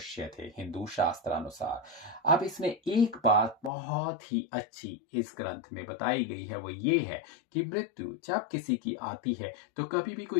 थे हिंदू शास्त्र अनुसार। अब इसमें एक बात बहुत ही अच्छी इस ग्रंथ में बताई गई है, वो ये है कि मृत्यु जब किसी की आती है तो कभी भी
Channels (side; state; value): right; drops out; at 3.7 s